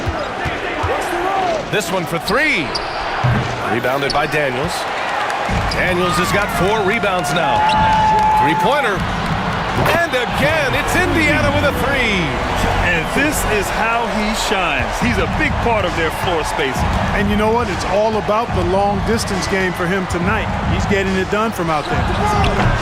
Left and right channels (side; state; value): both; identical; correlation 1.00